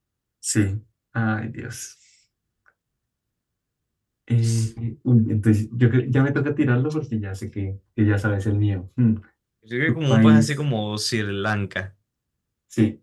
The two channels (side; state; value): both; identical; correlation 1.00